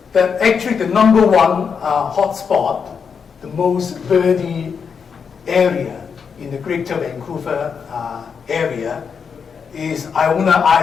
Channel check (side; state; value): right; quieter; 6.3 dB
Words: that actually the number one hotspot, the most birdy area in the Greater Vancouver area is Iona